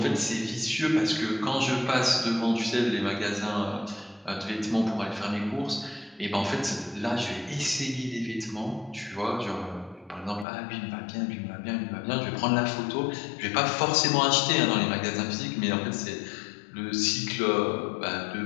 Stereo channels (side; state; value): right; drops out; at 10.5 s